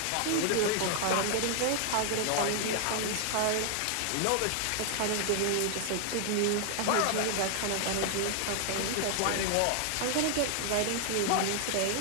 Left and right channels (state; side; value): different; both; correlation 0.00